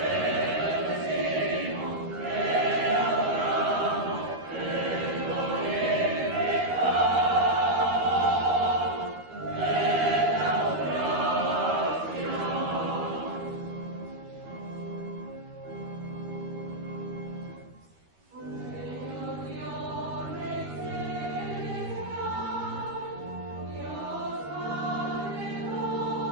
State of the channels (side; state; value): left; late; 13 ms